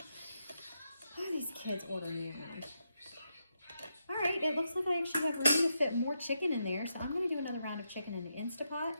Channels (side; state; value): both; inverted; correlation -0.83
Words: Why are these kids ordering me around? All right, it looks like I actually have room to fit more chicken in there, so I'm gonna do another round of chicken in the Instapot.